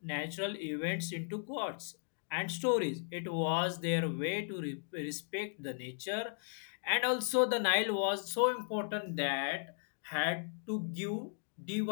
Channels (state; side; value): silent; right; digital silence